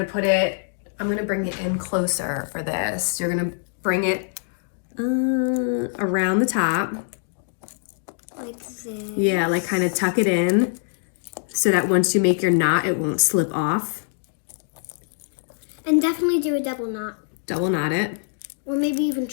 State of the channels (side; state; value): right; silent; digital silence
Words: put it, I'm going to bring it in closer for this. You're going to bring it around the top. Like this. Yeah, like kind of tuck it in so that once you make your knot, it won't slip off. And definitely do a double knot. Double knot it. Or maybe even